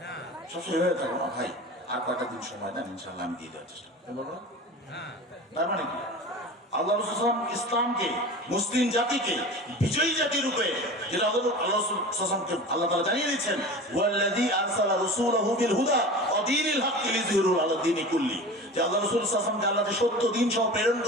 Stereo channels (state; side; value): normal; both; correlation 0.35